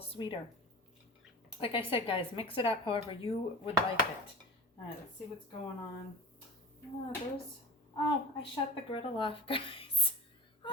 sweeter. Like I said, guys, mix it up however you would like it. All right, let's see what's going on. Oh, I shut the griddle off, guys.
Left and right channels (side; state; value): both; normal; correlation 0.32